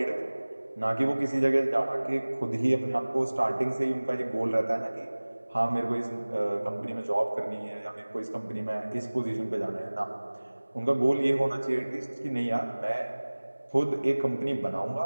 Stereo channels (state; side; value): inverted; both; correlation -1.00